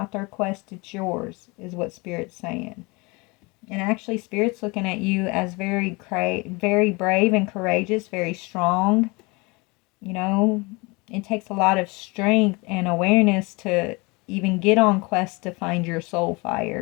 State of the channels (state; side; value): quieter; right; 26.6 dB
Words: their quest, it's yours, is what Spirit's saying. And actually, Spirit's looking at you as very brave and courageous, very strong. You know, it takes a lot of strength and awareness to even get on quest to find your soul